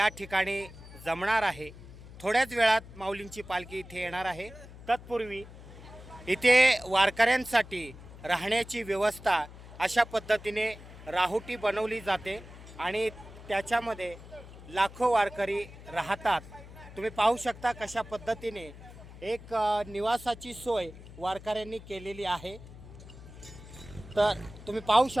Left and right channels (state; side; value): noise; left; hum, 16 dB below the sound